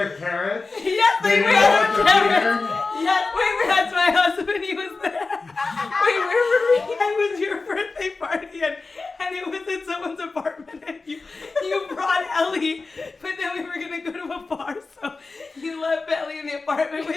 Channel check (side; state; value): right; quieter; 3.9 dB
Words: carrots? Yes, they fed her carrots. Yes, wait, that's my husband. He was there. Wait, where were we? It was your birthday party, and it was in someone's apartment, and you brought Ellie, but then we were going to go to a bar, so you left Ellie in the apartment